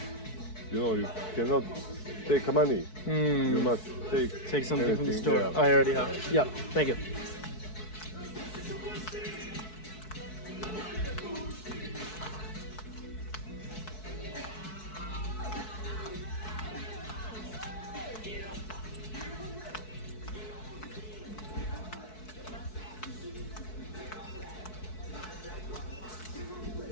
You know, you cannot take money. You must Take something from the anything, store. yeah. I already have. Yeah, thank you.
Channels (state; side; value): late; right; 4.6 ms